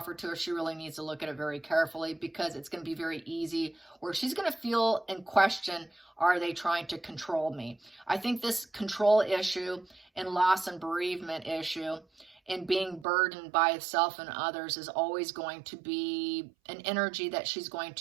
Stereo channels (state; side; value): drops out; left; at 13.1 s